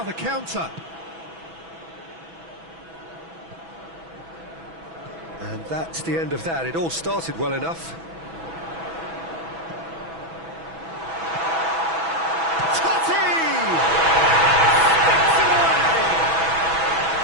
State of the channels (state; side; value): late; left; 6.1 ms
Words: the counter. And that's the end of that. It all started well enough. Totti! Sticks it away!